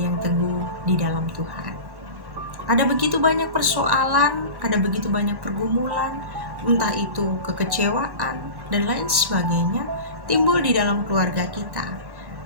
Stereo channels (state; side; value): late; left; 1.1 ms